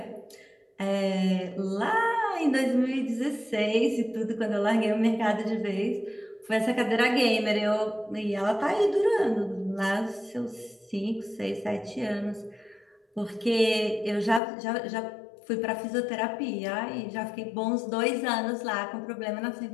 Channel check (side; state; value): right; drops out; at 14.4 s